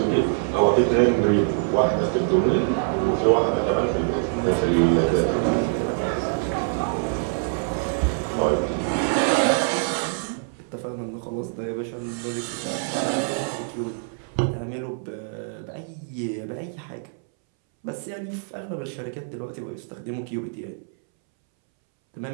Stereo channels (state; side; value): silent; left; 62 dB below the other